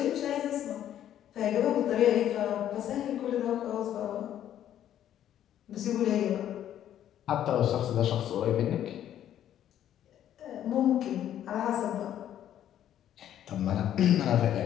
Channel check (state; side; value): quieter; right; 11.0 dB